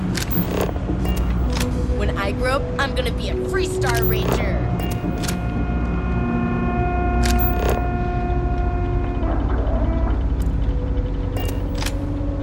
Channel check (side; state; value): both; identical; correlation 1.00